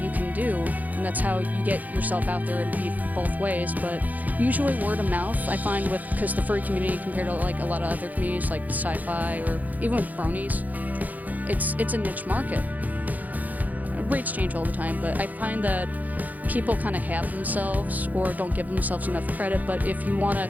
you can do, and that's how you get yourself out there. It'd be both ways, but usually word of mouth. I find because the furry community compared to like a lot of other communities like sci-fi or even with bronies, it's a niche market. Rates change all the time, but I find that people kind of have themselves or don't give themselves enough credit. But if you want to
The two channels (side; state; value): left; late; 0.080 ms